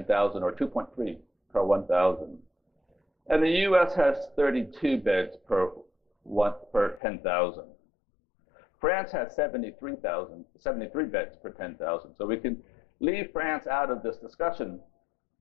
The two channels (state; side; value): drops out; right; at 7.0 s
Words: or 2.3 per 1,000. And the US has 32 beds per 10,000. France has 73 beds per 10,000. So we can leave France out of this discussion.